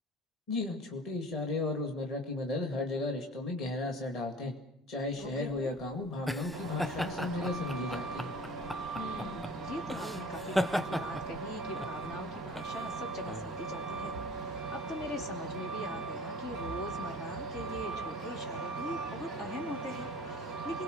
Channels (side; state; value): both; normal; correlation 0.45